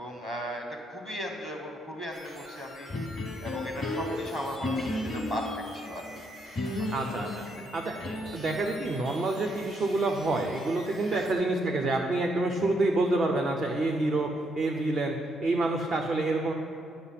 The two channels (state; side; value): normal; both; correlation 0.76